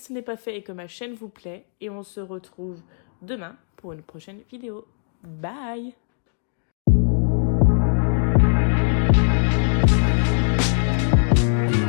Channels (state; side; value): silent; right; digital silence